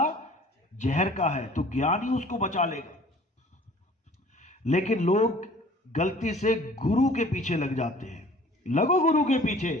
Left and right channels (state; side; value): normal; both; correlation 0.50